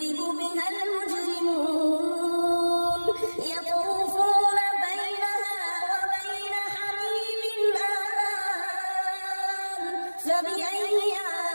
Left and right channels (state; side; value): inverted; both; correlation -1.00